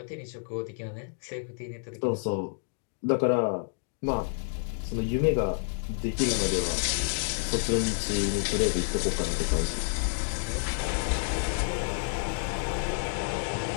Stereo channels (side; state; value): right; silent; digital silence